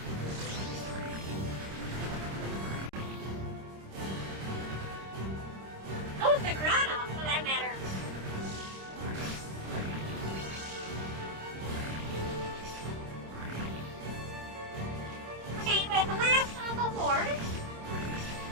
So is Marahna, for that matter. Okay, with the last of the horde.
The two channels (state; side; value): late; left; 26 ms